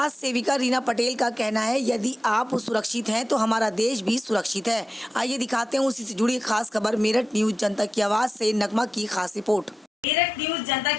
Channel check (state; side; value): normal; both; correlation 0.92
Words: सेविका रीना पटेल का कहना है यदि आप सुरक्षित हैं तो हमारा देश भी सुरक्षित है। आइए दिखाते हैं उसी से जुड़ी खास खबर। मेरठ न्यूज़ जनता की आवाज़ से नगमा की खास रिपोर्ट। मेरठ न्यूज़ जनता